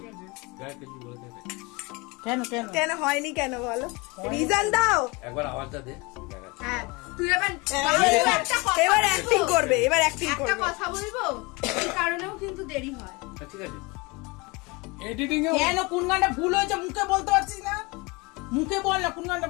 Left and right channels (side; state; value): right; quieter; 25.9 dB